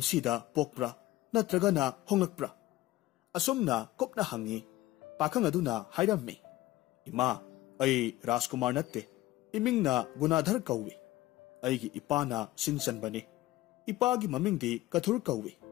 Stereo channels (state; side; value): quieter; right; 16.6 dB